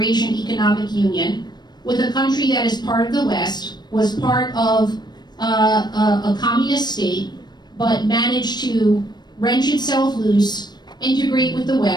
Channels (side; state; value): right; late; 0.21 ms